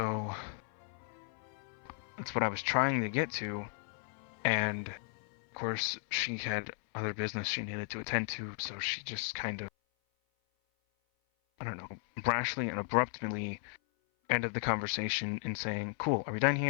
that's what I was trying to get to, and of course she had other business she needed to attend to, so she just kind of, I don't know, brashly and abruptly ended the conversation in saying, "Cool, are we done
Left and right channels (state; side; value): silent; right; 54 dB below the other